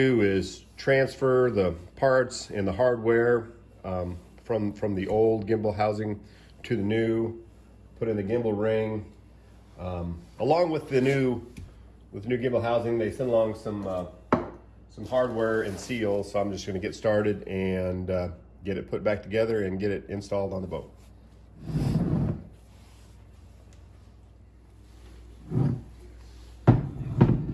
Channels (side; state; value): both; identical; correlation 1.00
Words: is transfer the parts and the hardware from the old gimbal housing to the new, put in the gimbal ring. Along with the new gimbal housing, they send along some hardware and seals. So I'm just going to get started and get it put back together and get it installed on the boat.